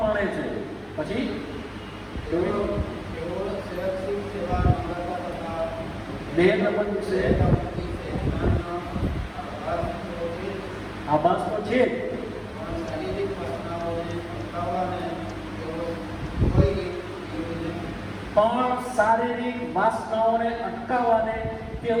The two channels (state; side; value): identical; both; correlation 1.00